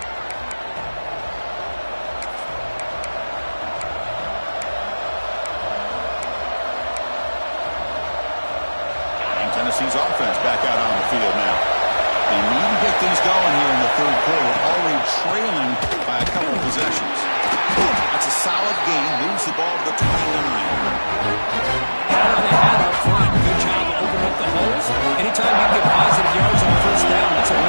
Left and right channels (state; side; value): inverted; both; correlation -1.00